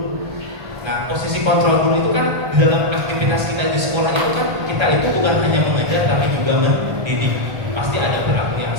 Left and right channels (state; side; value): late; left; 1.4 ms